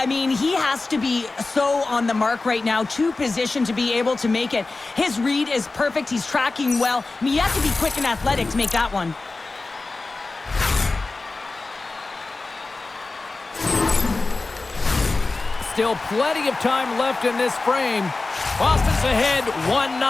mean, he has to be so on the mark right now, to position to be able to make it. His read is perfect. He's tracking well. I mean, you have to be quick and athletic to make that one. Still plenty of time left in this frame. Boston's ahead 1-0.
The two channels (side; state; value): right; quieter; 3.5 dB